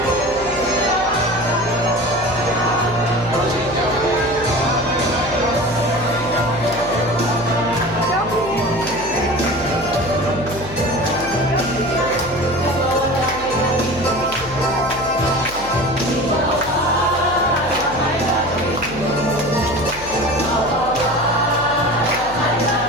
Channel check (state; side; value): noise; left; hum, 15 dB below the sound